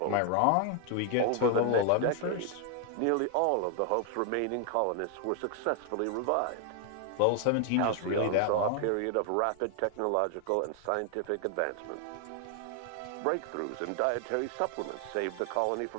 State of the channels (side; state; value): both; different; correlation 0.00